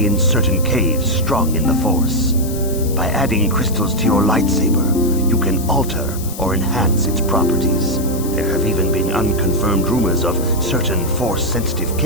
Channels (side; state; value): left; noise; hiss, 13 dB below the sound